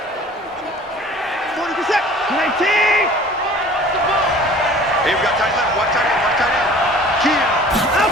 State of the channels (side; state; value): both; normal; correlation 0.47